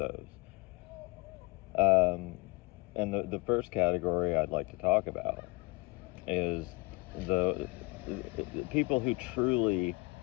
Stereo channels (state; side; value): quieter; right; 26.5 dB